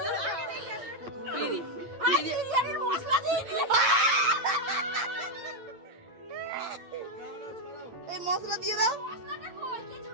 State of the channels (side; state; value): left; late; 8.8 ms